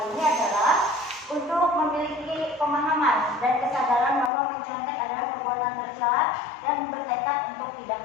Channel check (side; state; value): right; drops out; at 4.3 s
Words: ini adalah untuk memiliki pemahaman dan kesadaran bahwa mencontek adalah perbuatan tercela dan bertekad untuk tidak